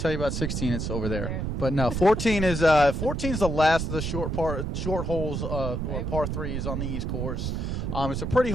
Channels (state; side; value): noise; right; rumble, 2 dB below the sound